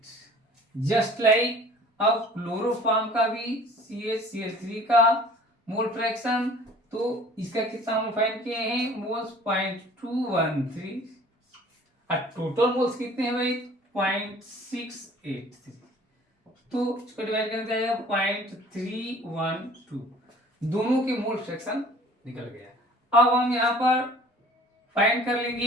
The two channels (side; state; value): both; normal; correlation 0.49